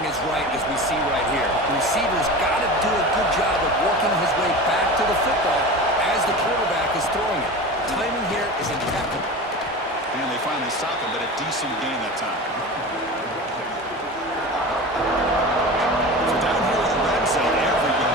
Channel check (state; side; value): normal; both; correlation 0.31